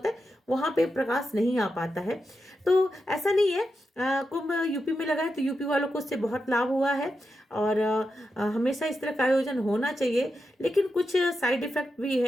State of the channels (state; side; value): normal; both; correlation 0.88